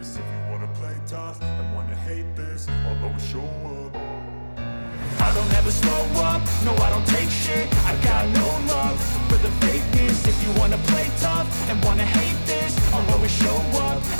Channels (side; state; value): both; inverted; correlation -1.00